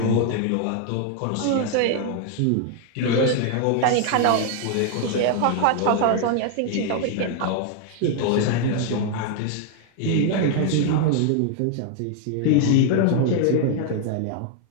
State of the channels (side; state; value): both; different; correlation 0.00